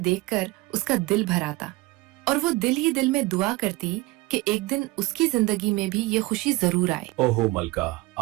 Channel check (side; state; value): left; quieter; 21.1 dB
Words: देखकर उसका दिल भर आता और वो दिल ही दिल में दुआ करती कि एक दिन उसकी जिंदगी में भी ये खुशी जरूर आए। ओहो मलका,